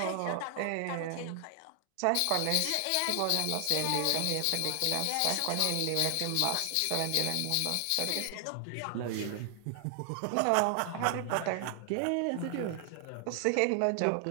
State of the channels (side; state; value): both; different; correlation 0.00